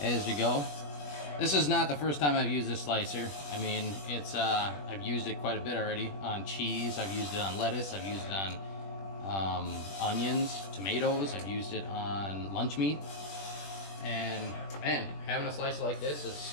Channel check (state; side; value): late; right; 21 ms